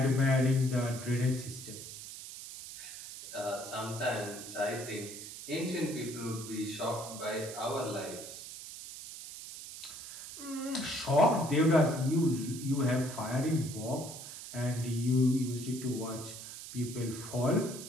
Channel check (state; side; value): noise; right; hiss, 11 dB below the sound